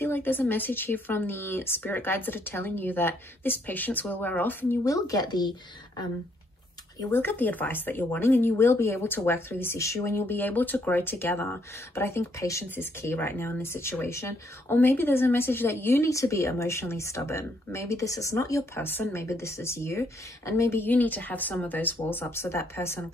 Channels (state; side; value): normal; both; correlation 0.71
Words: like there's a message here from the spirit guides that are telling you that this patience will wear off and you will get the advice that you're wanting, and you will be able to work through this issue and you'll be able to grow together. But I think patience is key right now in this situation. Or maybe there's a message that you need to be emotionally stubborn. Maybe this is not your person, maybe this is you, and maybe you need to have some of those walls up so that person